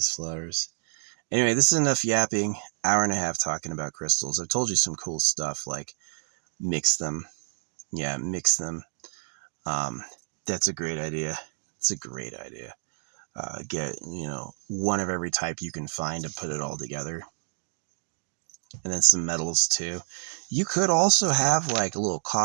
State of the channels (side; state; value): left; silent; digital silence